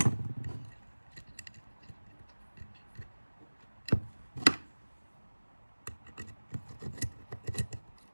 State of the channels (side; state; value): both; inverted; correlation -1.00